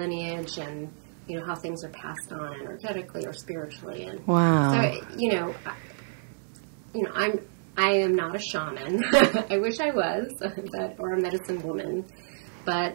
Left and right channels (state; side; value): silent; left; digital silence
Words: and, how things are passed on energetically or spiritually. And wow. So, I am not a shaman. I wish I was, or a medicine woman.